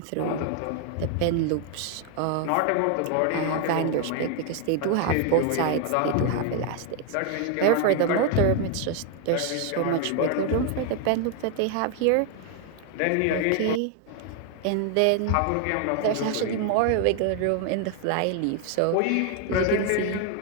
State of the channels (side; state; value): both; different; correlation 0.01